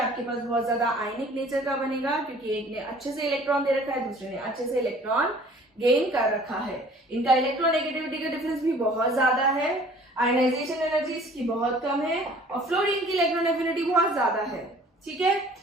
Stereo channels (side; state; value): both; normal; correlation 0.52